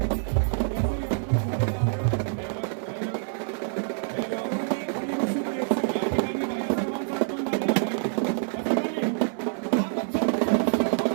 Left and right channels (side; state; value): left; silent; digital silence